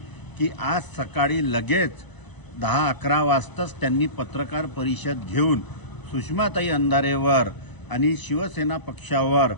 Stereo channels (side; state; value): right; late; 1.0 ms